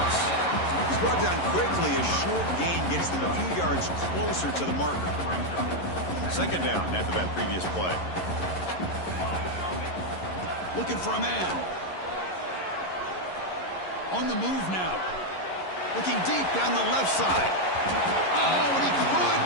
He's brought down quickly. A short gain gets them a few yards closer to the marker. 2nd down after that previous play. Looking for a man. On the move now. Looking deep down the left side. Oh, and he could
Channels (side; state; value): right; late; 11 ms